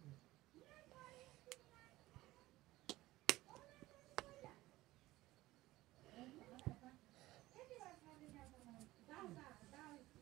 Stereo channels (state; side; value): quieter; left; 17.6 dB